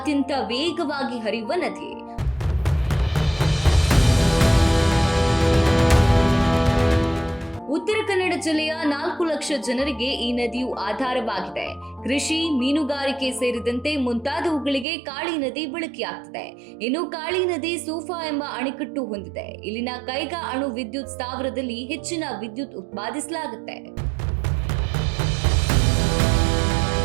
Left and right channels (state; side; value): drops out; left; at 14.9 s